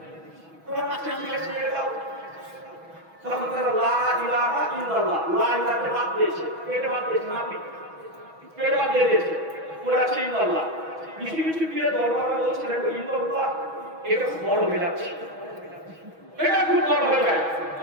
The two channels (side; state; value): left; late; 6.2 ms